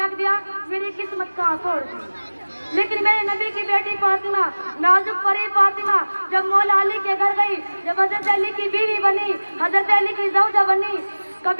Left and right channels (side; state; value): both; inverted; correlation -1.00